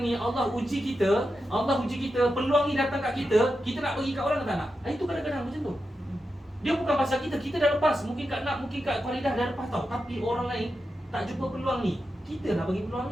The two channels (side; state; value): both; normal; correlation 0.89